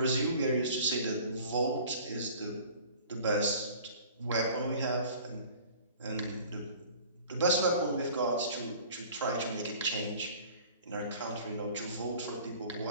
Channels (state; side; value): inverted; both; correlation -0.46